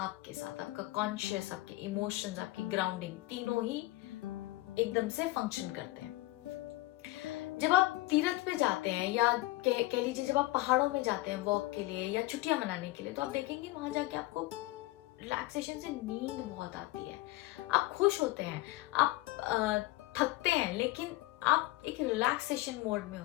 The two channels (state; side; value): quieter; right; 19.0 dB